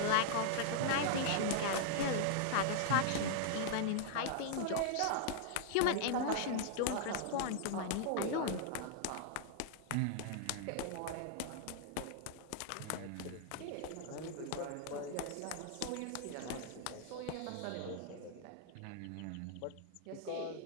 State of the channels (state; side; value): different; both; correlation -0.01